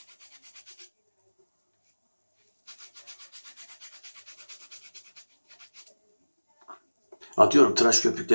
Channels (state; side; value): inverted; both; correlation -1.00